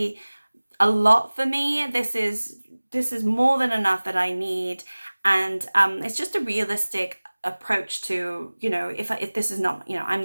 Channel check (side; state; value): both; inverted; correlation -1.00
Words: a lot for me. This is more than enough that I need, and it's just a realistic approach to, you know, if this is not, you